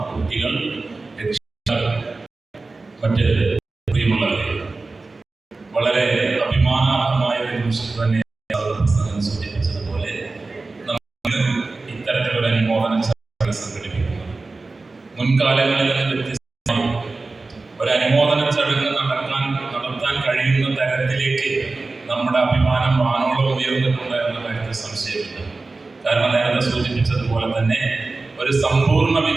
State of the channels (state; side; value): quieter; left; 3.6 dB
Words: കുട്ടികൾ, മറ്റ് പ്രിയമുള്ളവരെ, വളരെ അഭിമാനാർഹമായ ഒരു നിമിഷം തന്നെ സൂചിപ്പിച്ചതുപോലെ നമ്മൾ ഇത്തരത്തിലുള്ള അനുമോദനം സംഘടിപ്പിക്കുന്നു. മുൻകാലങ്ങളിൽ നിന്ന് വ്യത്യസ്തമായി ഒരു അനുമോദന ചടങ്ങ് നടത്താൻ കഴിയുന്ന തരത്തിലേക്ക് നമ്മുടെ അഭിമാനം വാനോളം ഉയർന്നിട്ടുണ്ട് എന്ന കാര്യത്തിൽ സംശയമില്ല. കാരണം നേരത്തെ സൂചിപ്പിച്ചതുപോലെ തന്നെ ഒരു സമ്പൂർണ്ണ